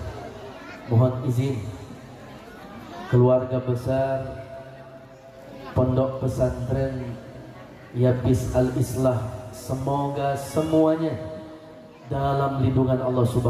mohon izin. Keluarga besar Pondok Pesantren Yapis Al-Islah, semoga semuanya dalam lindungan Allah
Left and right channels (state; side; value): identical; both; correlation 1.00